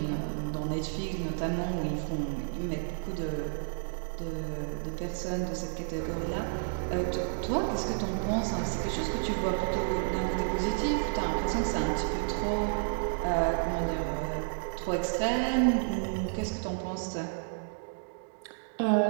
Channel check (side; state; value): left; silent; digital silence